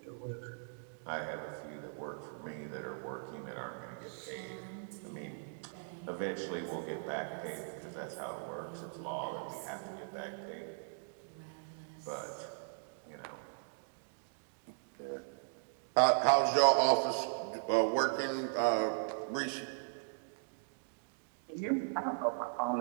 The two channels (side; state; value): left; silent; digital silence